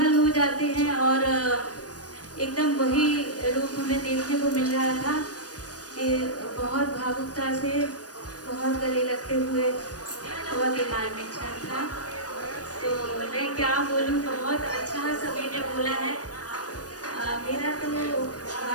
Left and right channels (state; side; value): late; right; 0.68 ms